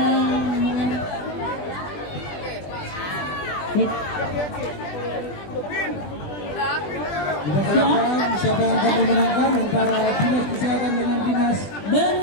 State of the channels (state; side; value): late; right; 20 ms